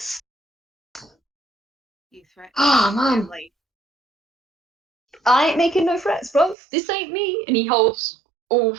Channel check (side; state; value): left; drops out; at 6.6 s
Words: You threatened Ah, my man. family. I ain't making no threats, bro. This ain't me. And he holds all